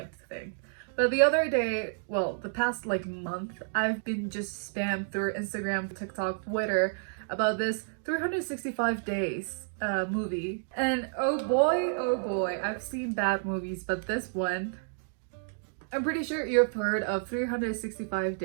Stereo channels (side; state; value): left; silent; digital silence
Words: to think. But the other day, well, the past like month, I've been just spammed through Instagram, TikTok, Twitter about this 365 days movie. And oh boy, I've seen bad movies, but this one, I'm pretty sure you've heard of 365